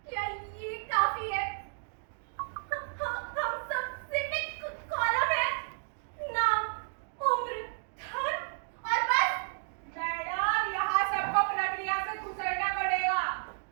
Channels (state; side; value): silent; left; digital silence